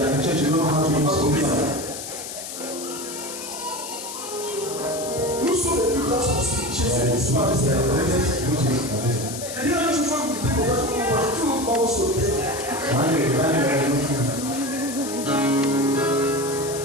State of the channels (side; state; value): left; noise; hiss, 9 dB below the sound